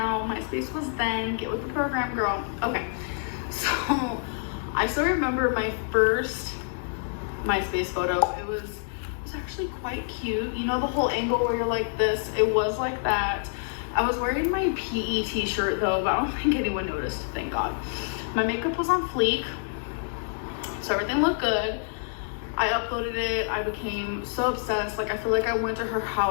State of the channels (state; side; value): silent; right; digital silence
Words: MySpace was then. Get with the program, girl. Okay. So, I still remember my first MySpace photo. It was actually quite cute. You know the whole angle where you're like this? It was like that. I was wearing my PE t-shirt though, but I don't think anyone noticed, thank God. My makeup was on fleek, so everything looked good. I uploaded it. I became so obsessed. Like, I feel like I went to her